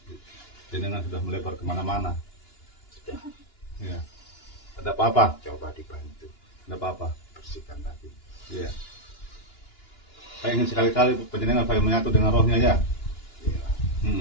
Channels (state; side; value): late; right; 2.9 ms